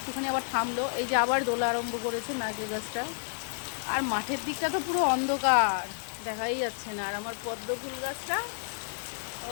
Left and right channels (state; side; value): silent; right; 58 dB below the other